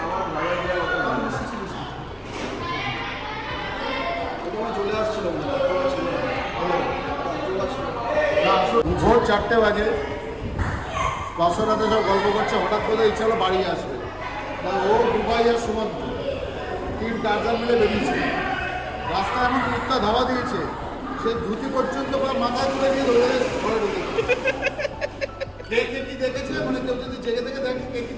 চলে আসছিল ভোর 4টে বাজে, বাসরাতে সব গল্প করছে, হঠাৎ করে ইচ্ছা হলো বাড়ি আসবে। ও দুবাই আর সুমন্ত 3 টার্জার মিলে বেরিয়েছে। রাস্তায় এমন কুত্তা ধাওয়া দিয়েছে, সে ধুতি পর্যন্ত মাথায় তুলে দিয়ে ধরে ঘরে ঢুকেছে। কে কি দেখেছে, মানে কেউ যদি জেগে থেকে দেখে কে কি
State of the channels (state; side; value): identical; both; correlation 1.00